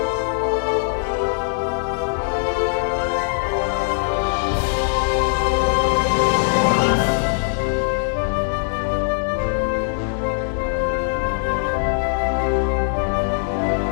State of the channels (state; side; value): silent; right; 65 dB below the other